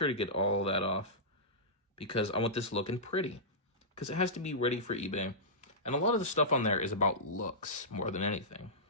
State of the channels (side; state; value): both; normal; correlation -0.15